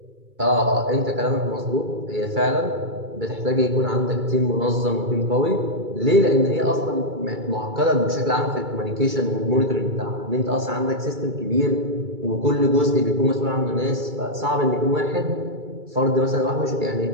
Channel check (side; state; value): left; late; 2.3 ms